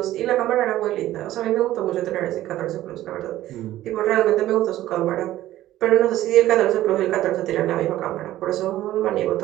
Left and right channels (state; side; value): quieter; left; 14.4 dB